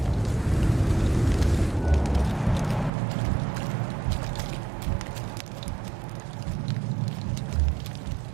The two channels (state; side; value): drops out; left; at 2.9 s